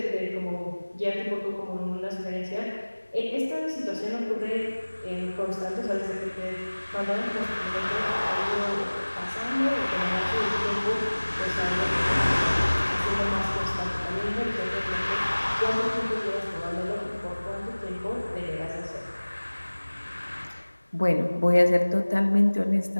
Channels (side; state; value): both; inverted; correlation -1.00